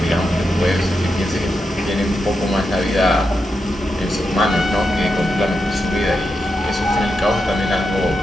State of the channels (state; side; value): normal; both; correlation 0.86